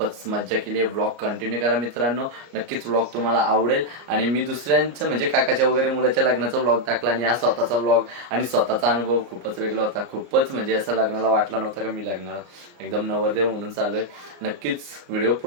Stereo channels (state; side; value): late; left; 34 ms